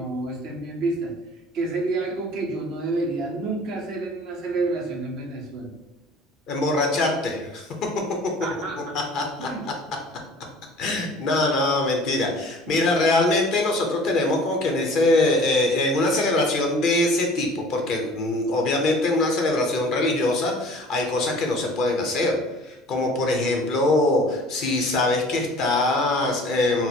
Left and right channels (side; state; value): both; normal; correlation 0.48